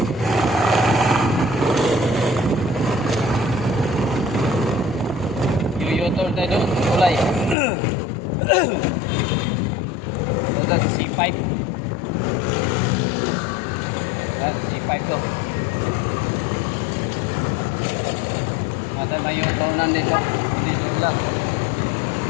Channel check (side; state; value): right; drops out; at 7.6 s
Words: Yuyotor tayo doon, kulay. Ito sa C5. C5 to. Mata may yutonan dito. Dito lang.